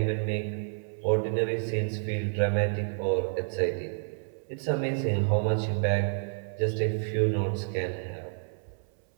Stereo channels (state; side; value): silent; left; 58 dB below the other